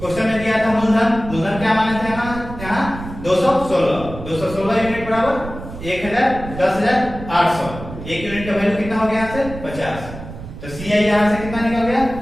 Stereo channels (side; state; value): right; noise; rumble, 11 dB below the sound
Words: में दिया था मूलधन, मूलधन क्या माने थे यहाँ 216 यूनिट बराबर 10,800। एक यूनिट का वैल्यू कितना हो गया यहाँ से 50। तो CI यहाँ से कितना निकल गया